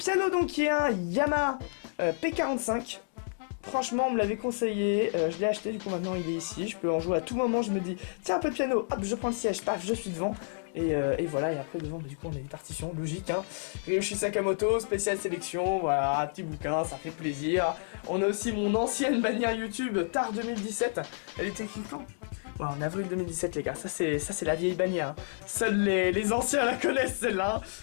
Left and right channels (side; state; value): right; silent; digital silence